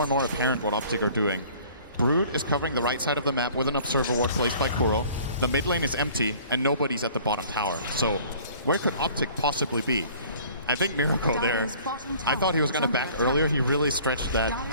and more apparent what Optic are doing. Brood is covering the right side of the map with an observer ward placed by Kuro. The mid lane is empty, and nobody's at the bottom tower. So where could Optic possibly be? I think Miracle there, I thought he was going to back earlier. He really stretched that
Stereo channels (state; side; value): inverted; both; correlation -0.51